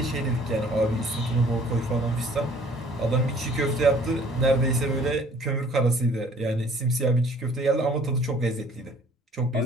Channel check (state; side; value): normal; both; correlation 0.55